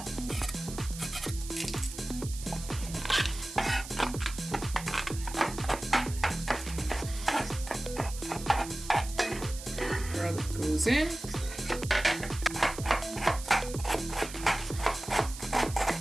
Garlic goes in.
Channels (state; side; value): noise; right; hiss, 12 dB below the sound